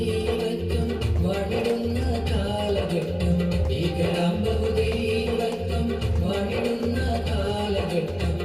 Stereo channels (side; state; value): left; noise; hum, 23 dB below the sound